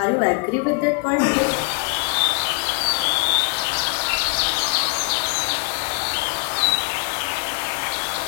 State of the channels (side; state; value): right; quieter; 33.3 dB